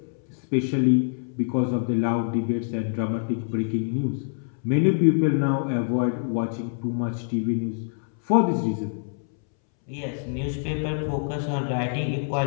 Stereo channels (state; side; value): silent; right; 61 dB below the other